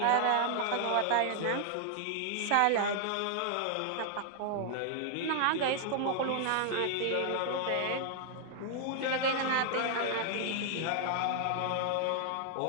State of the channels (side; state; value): both; different; correlation 0.00